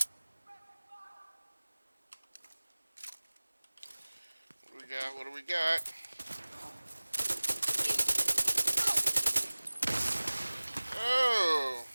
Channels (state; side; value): inverted; both; correlation -1.00